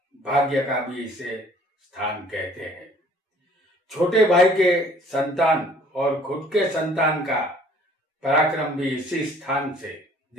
भाग्य का भी इसे स्थान कहते हैं। छोटे भाई के संतान और खुद के संतान का पराक्रम भी इसी स्थान से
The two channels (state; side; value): normal; both; correlation 0.55